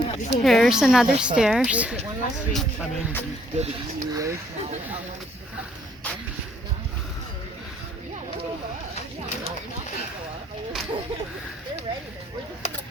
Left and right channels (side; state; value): both; normal; correlation 0.65